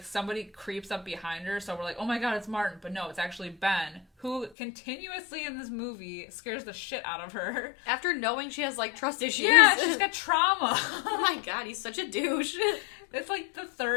somebody creeps up behind her, so we're like, oh my god, it's Martin. But no, it's actually Ben, who continuously in this movie scares the shit out of her. After knowing she has, like, trust issues. Yeah, she's got trauma. Oh my god, he's such a douche. It's, like, the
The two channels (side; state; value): right; drops out; at 4.5 s